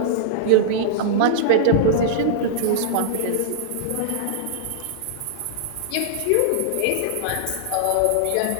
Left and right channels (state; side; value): different; both; correlation -0.02